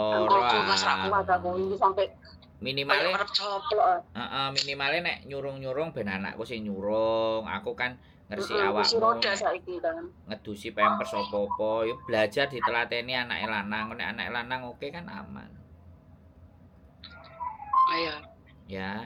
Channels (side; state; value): both; identical; correlation 1.00